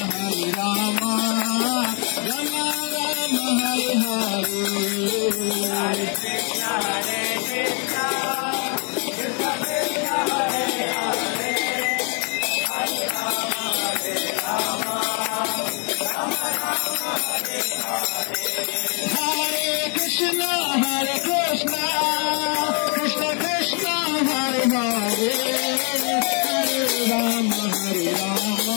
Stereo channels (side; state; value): right; quieter; 37.9 dB